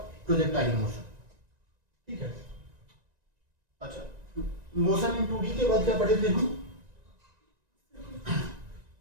Projectile motion. ठीक है, अच्छा, मोशन इन 2D के बाद क्या पढ़े थे हम?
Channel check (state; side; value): late; left; 1.9 ms